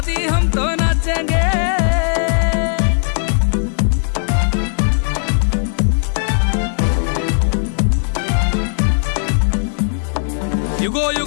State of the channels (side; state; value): right; silent; 64 dB below the other